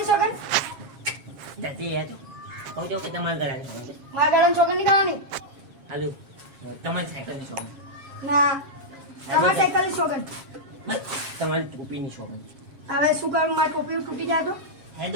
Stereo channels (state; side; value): late; left; 7.4 ms